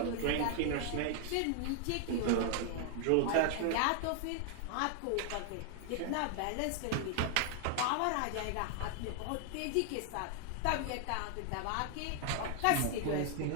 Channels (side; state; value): both; different; correlation 0.00